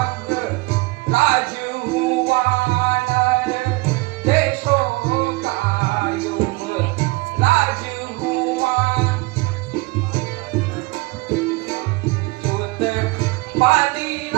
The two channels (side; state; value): left; quieter; 24.0 dB